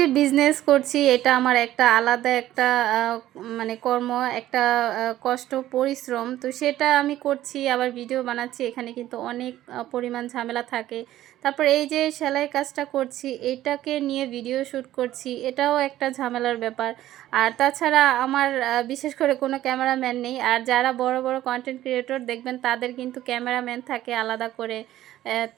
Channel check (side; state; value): left; quieter; 13.8 dB